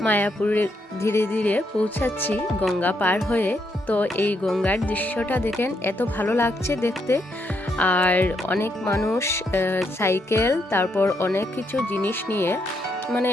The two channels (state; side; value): normal; both; correlation 0.77